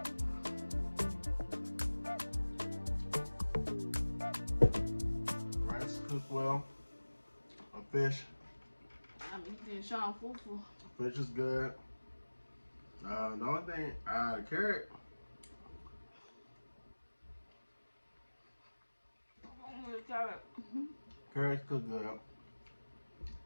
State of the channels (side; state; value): both; inverted; correlation -1.00